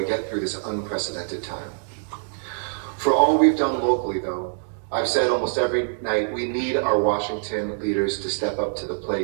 get through this unprecedented time. For all we've done locally, though, I've said almost every night, we need our Washington leaders to step up to the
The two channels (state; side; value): silent; left; digital silence